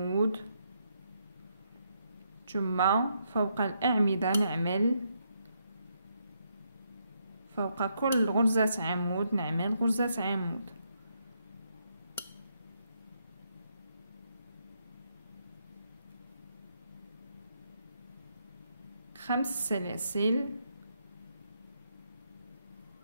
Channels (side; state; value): both; inverted; correlation -0.77